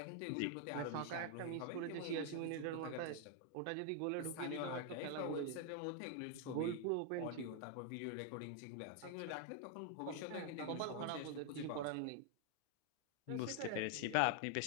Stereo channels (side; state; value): both; different; correlation 0.00